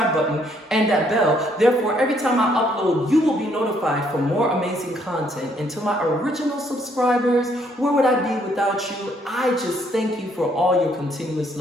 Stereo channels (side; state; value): both; normal; correlation 0.68